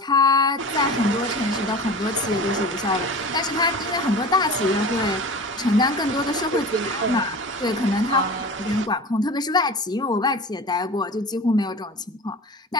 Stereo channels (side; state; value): both; normal; correlation 0.35